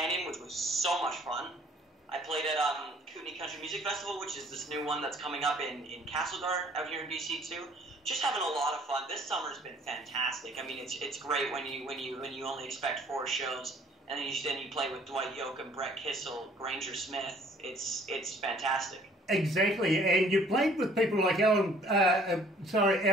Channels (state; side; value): normal; both; correlation 0.57